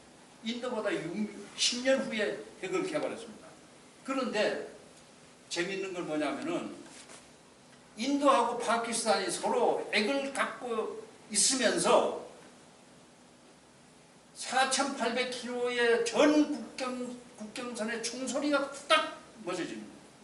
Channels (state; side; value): identical; both; correlation 1.00